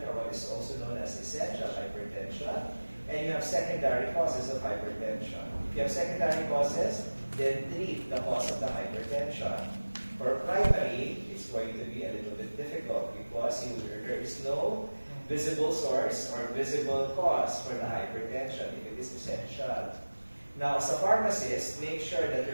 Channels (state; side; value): inverted; both; correlation -1.00